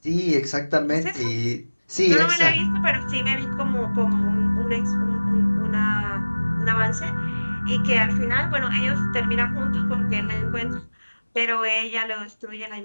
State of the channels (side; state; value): both; inverted; correlation -1.00